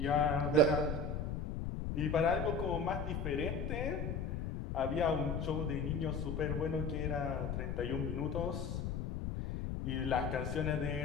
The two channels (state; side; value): noise; left; rumble, 2 dB below the sound